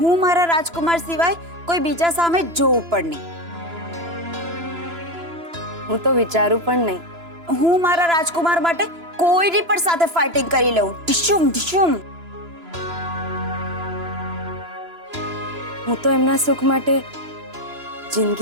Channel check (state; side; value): late; left; 3.0 ms